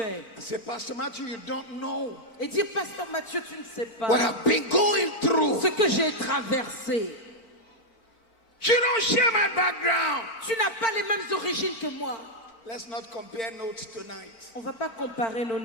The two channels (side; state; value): right; late; 3.9 ms